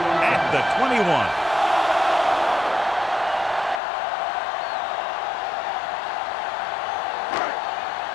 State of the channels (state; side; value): drops out; right; at 3.8 s